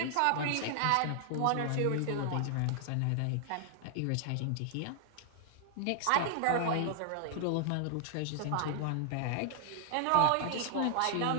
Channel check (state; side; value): different; both; correlation 0.00